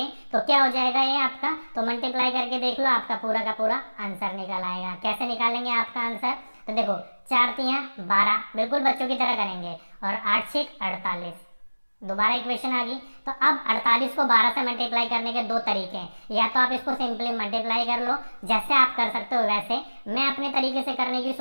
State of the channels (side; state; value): both; inverted; correlation -1.00